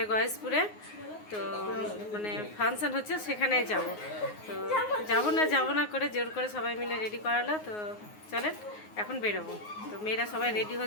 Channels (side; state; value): right; late; 9.5 ms